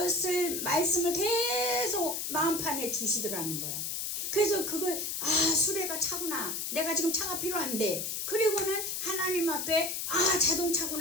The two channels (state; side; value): noise; left; hiss, 3 dB below the sound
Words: 말씀을 계속 마음판에 주시더라는 거예요. 그래서 그걸 수레가 차구나 내가 지금 차가 필요한데 그리고는 하나님 앞에